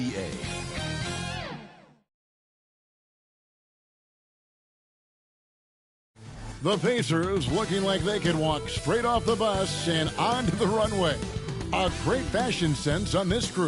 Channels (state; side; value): identical; both; correlation 1.00